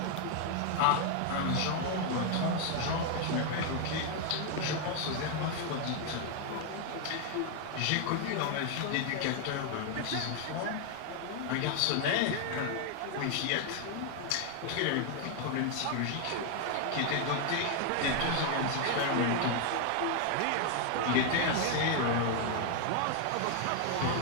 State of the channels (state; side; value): different; both; correlation 0.00